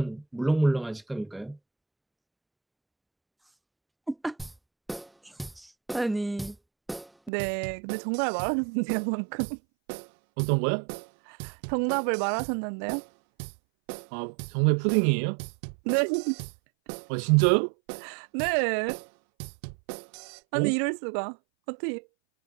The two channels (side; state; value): left; drops out; at 7.3 s